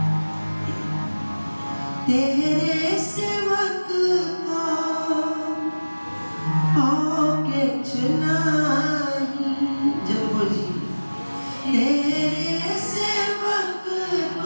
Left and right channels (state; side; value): inverted; both; correlation -1.00